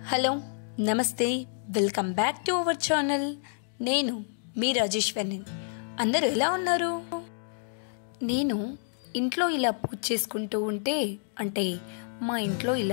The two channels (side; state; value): right; silent; digital silence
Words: hello నమస్తే welcome back to our channel. నేను మీ రాజేశ్వరిని. అందరూ ఎలా ఉన్నారు? నేను ఇంట్లో ఇలా పూజ చేసుకుంటూ ఉంటే మా ఇంట్లో